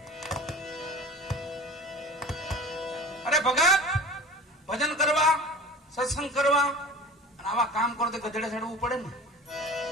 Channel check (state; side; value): normal; both; correlation 0.38